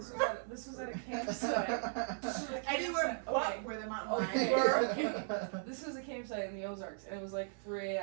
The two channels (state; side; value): silent; left; 53 dB below the other